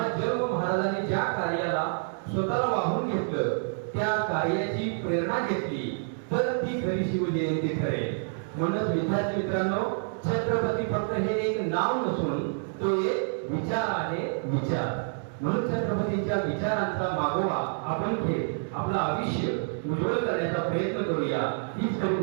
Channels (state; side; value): silent; left; digital silence